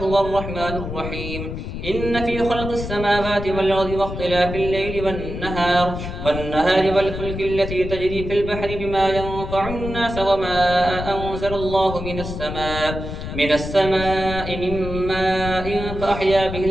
الرحمن الرحيم. إن في خلق السماوات والأرض واختلاف الليل والنهار والفلك التي تجري في البحر بما ينفع الناس وما أنزل الله من السماء من ماء فأحيا به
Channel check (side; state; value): left; noise; rumble, 7 dB below the sound